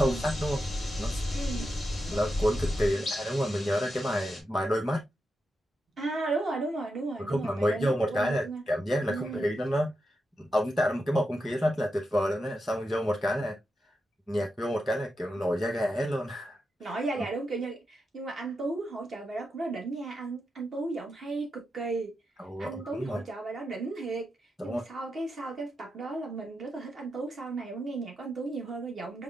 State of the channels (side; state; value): both; normal; correlation 0.87